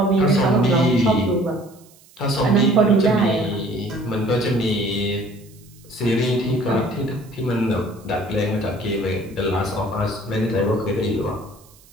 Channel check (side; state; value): right; noise; hiss, 27 dB below the sound